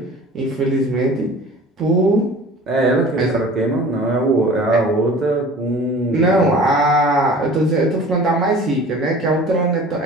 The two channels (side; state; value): both; normal; correlation 0.44